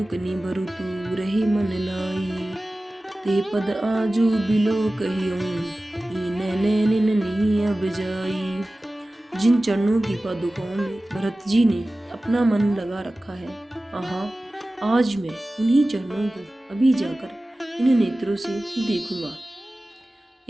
निभरु तू, रही मन लाई। ते पद आजू बिलो कहियूं, नैन नहीं अब जाई। जिन चरणों की पादुकाओं में भरत जी ने अपना मन लगा रखा है, आहा, आज मैं उन्हीं चरणों को अभी जाकर इन नेत्रों से देखूंगा।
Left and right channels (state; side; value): normal; both; correlation 0.96